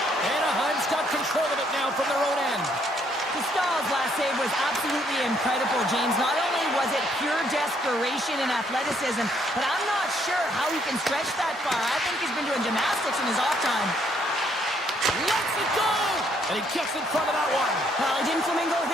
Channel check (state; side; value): normal; both; correlation 0.69